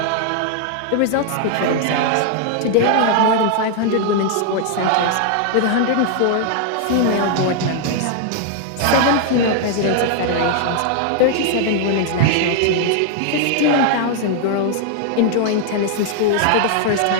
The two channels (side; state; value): both; different; correlation 0.00